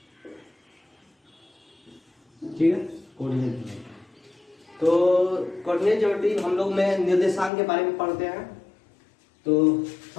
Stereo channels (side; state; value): right; drops out; at 7.5 s